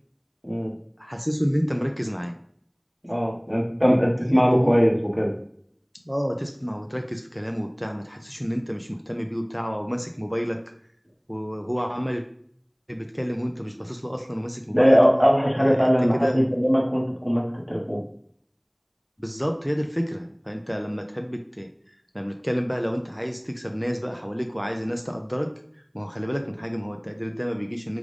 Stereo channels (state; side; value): identical; both; correlation 1.00